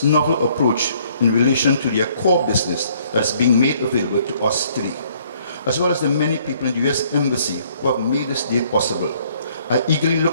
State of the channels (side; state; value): both; inverted; correlation -0.63